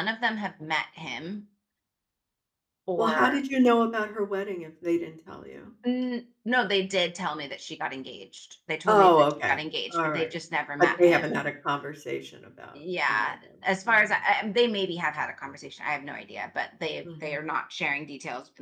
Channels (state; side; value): identical; both; correlation 1.00